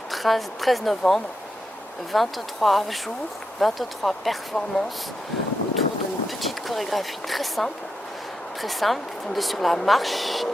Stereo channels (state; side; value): normal; both; correlation 0.85